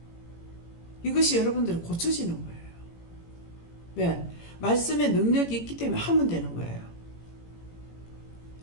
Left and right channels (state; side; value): late; right; 18 ms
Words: 이것이 여러분들은 고쳐지는 거예요. 왜? 말씀의 능력이 있기 때문에 하면 되는 거예요.